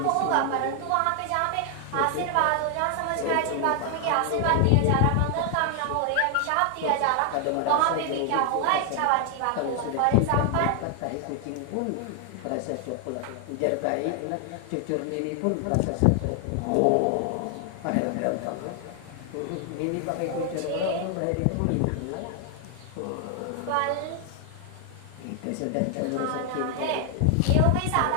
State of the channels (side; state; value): both; different; correlation 0.00